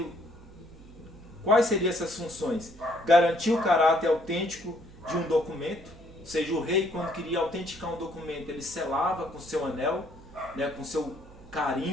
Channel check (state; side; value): noise; right; hum, 21 dB below the sound